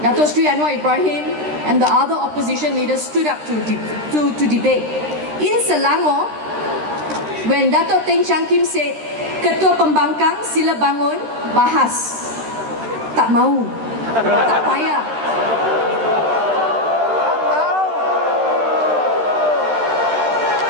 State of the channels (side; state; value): left; late; 13 ms